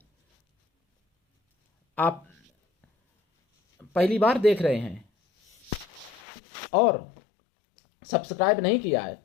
आप पहली बार देख रहे हैं और सब्सक्राइब नहीं किया है,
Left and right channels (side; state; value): right; drops out; at 6.2 s